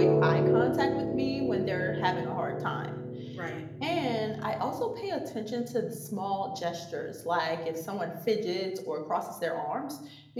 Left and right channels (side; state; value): both; identical; correlation 1.00